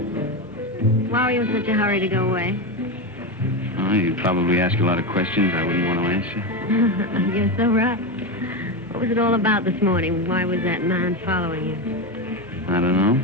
Why were you in such a hurry to go away? Oh, you'd probably ask a lot of questions I wouldn't want to answer. You're so right. What was it all about this morning? Why was that man following you? I don't know.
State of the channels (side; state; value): both; normal; correlation 0.15